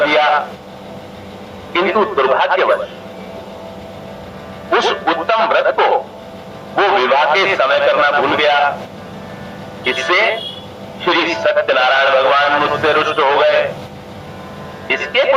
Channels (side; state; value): both; identical; correlation 1.00